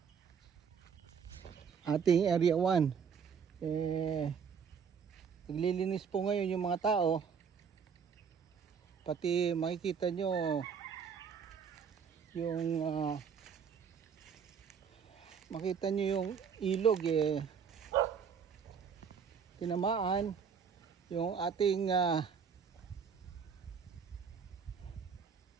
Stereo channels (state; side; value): quieter; left; 6.7 dB